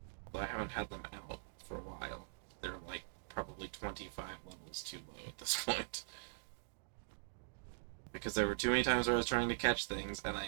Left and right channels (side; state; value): left; silent; digital silence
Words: Although I haven't had them out for a while. They're like probably 25 levels too low at this point. Because there were too many times where I was trying to catch things and